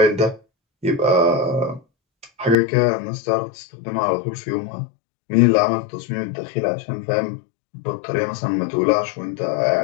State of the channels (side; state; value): right; drops out; at 2.6 s